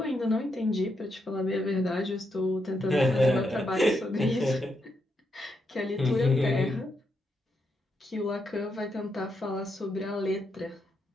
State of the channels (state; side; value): normal; both; correlation 0.81